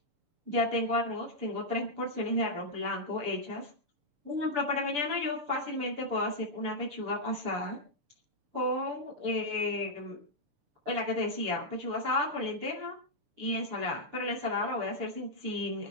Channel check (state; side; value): late; left; 6.9 ms